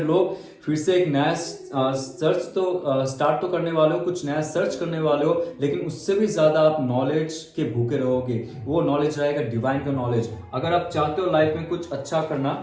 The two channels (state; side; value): identical; both; correlation 1.00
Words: लोग फिर से एक नया सर्च तो स्टार्ट तो करने वाले हो, कुछ नया सर्च करने वाले हो, लेकिन उससे भी ज्यादा आप नॉलेज के भूखे रहोगे। वो नॉलेज रहेगा डिवाइन का नॉलेज। अगर आप चाहते हो लाइफ में कुछ अच्छा करना,